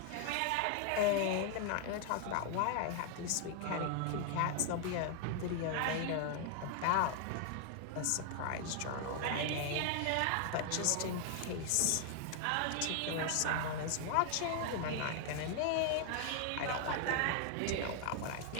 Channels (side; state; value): both; different; correlation 0.00